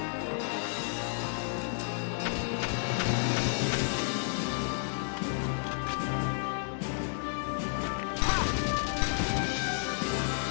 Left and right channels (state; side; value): silent; right; digital silence